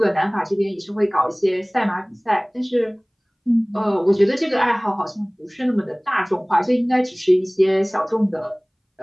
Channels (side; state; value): both; identical; correlation 1.00